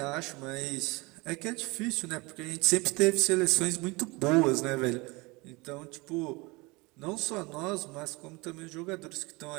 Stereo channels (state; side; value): quieter; left; 24.8 dB